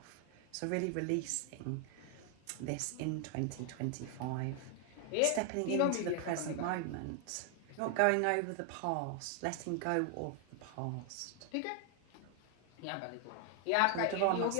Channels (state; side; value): different; both; correlation 0.00